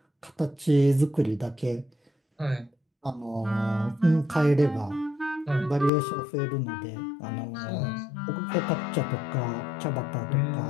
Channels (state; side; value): drops out; right; at 5.9 s